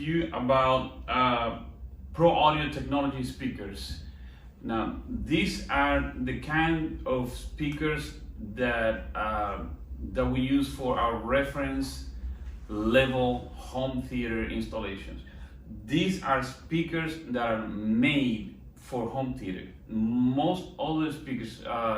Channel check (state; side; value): identical; both; correlation 1.00